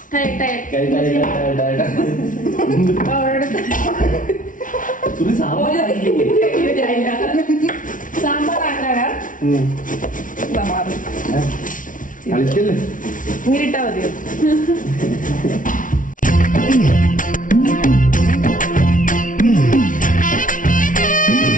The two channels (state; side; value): late; right; 0.38 ms